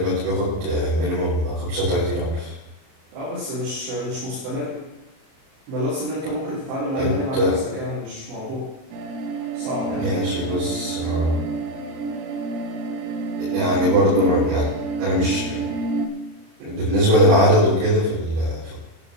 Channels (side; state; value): left; late; 38 ms